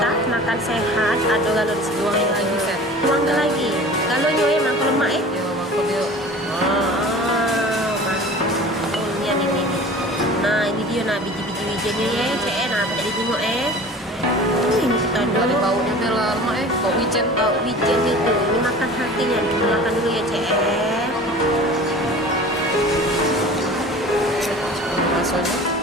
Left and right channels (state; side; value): normal; both; correlation 0.41